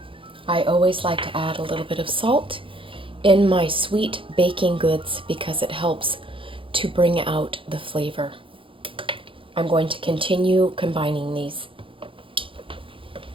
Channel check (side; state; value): left; late; 0.25 ms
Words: I always like to add a little bit of salt in my sweet baking goods because it helps to bring out the flavor. I'm going to continue combining these.